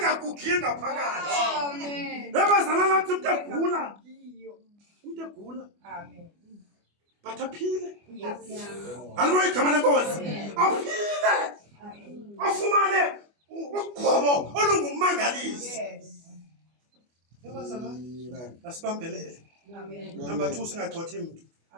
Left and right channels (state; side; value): late; left; 24 ms